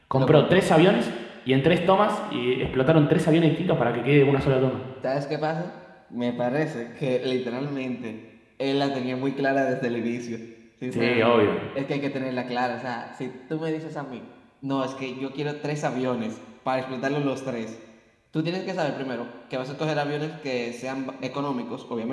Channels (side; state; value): both; identical; correlation 1.00